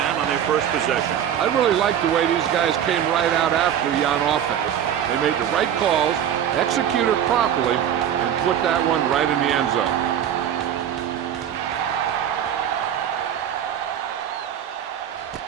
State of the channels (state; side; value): quieter; left; 9.7 dB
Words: on their first possession. I really like the way these guys came right out after you on offense. They made the right calls, executed properly, and put that one right in the end zone.